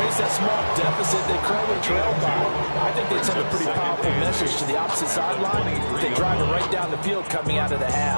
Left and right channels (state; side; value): inverted; both; correlation -1.00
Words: that small deficit they currently trailed by. I think they'd send a pretty powerful message to the opposite sideline if they drive it right down the field coming out of the